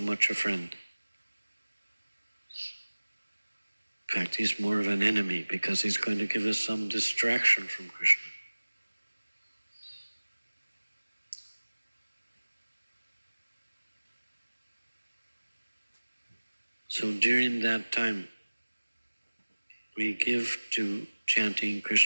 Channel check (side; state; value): both; inverted; correlation -1.00